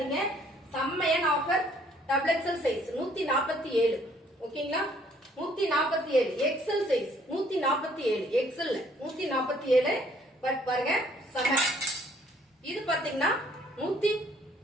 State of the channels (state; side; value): normal; both; correlation 0.62